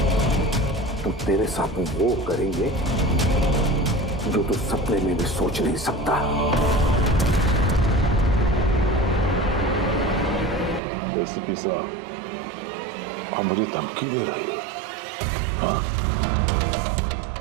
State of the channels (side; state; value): left; drops out; at 10.8 s